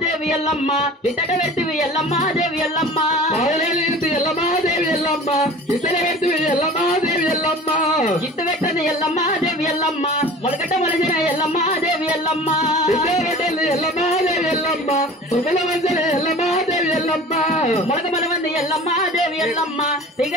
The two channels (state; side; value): normal; both; correlation 0.40